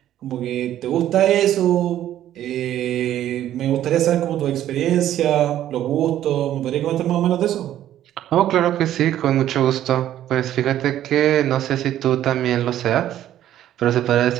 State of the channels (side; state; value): left; quieter; 12.1 dB